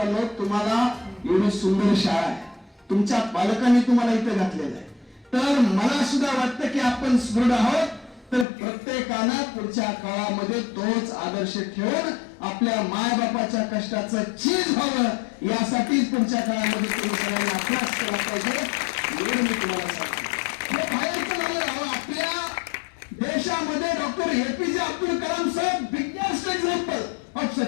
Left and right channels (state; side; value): drops out; right; at 8.5 s